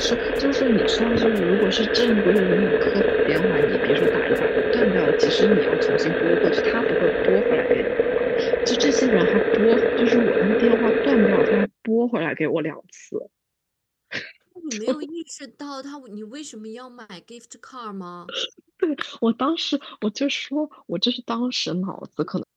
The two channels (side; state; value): both; identical; correlation 1.00